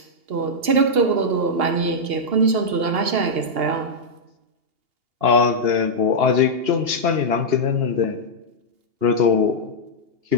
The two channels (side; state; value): left; late; 2.8 ms